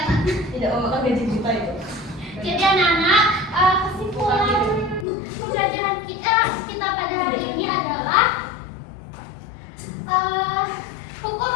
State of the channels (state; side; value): drops out; right; at 5.1 s